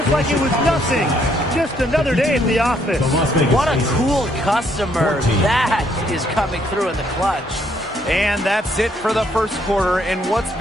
like it was nothing. Just another day at the office. What a cool customer. That is coming through in the clutch. And that's it for the first quarter in what's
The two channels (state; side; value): normal; both; correlation 0.70